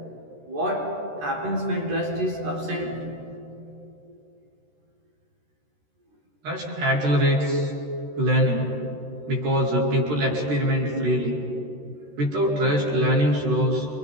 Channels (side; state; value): left; late; 13 ms